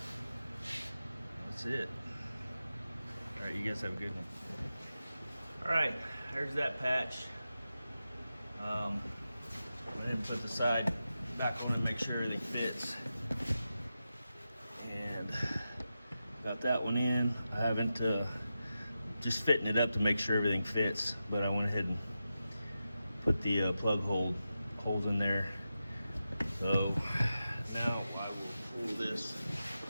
that's it. All right, you guys have a good one. All right, there's that patch. Go ahead and put the side back on and make sure everything fits. And got that one in. I haven't just fitting it up to make sure everything fits, but I went ahead and put the plug holes in there. So now I will pull this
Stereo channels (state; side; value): inverted; both; correlation -0.90